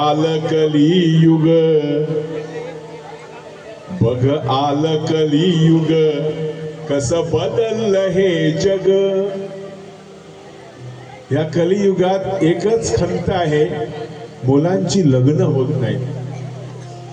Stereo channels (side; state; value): both; identical; correlation 1.00